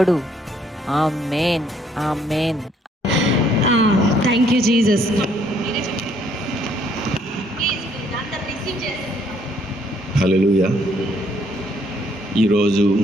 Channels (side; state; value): both; normal; correlation 0.66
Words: Amen, amen. Thank you Jesus. Hallelujah. ఈరోజు